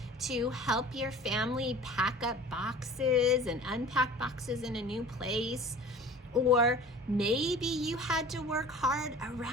to help your family pack up boxes and unpack boxes in a new place. Or maybe you had to work hard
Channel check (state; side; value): normal; both; correlation 0.43